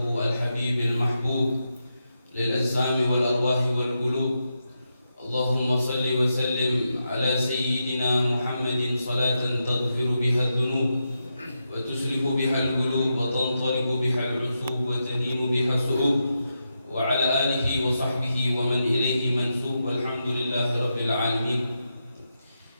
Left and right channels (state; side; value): inverted; both; correlation -0.87